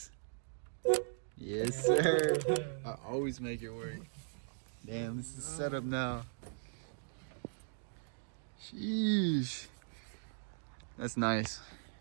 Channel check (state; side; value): silent; left; digital silence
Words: Yes, sir. I always make it work. Damn, this is set up now. Sheesh. That's nice.